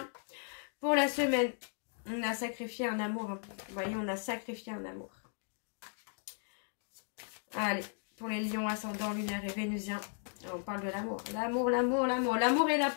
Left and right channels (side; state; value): right; silent; 54 dB below the other